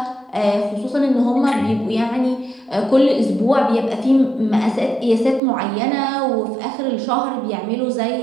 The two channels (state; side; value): drops out; left; at 5.4 s